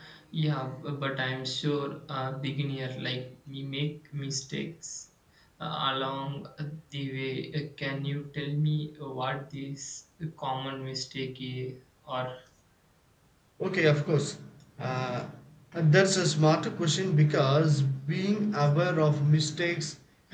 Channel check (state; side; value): identical; both; correlation 1.00